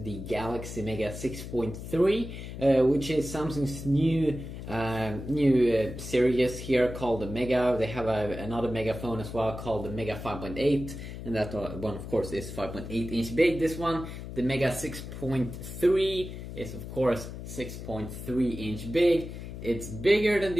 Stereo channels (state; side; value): noise; left; hum, 9 dB below the sound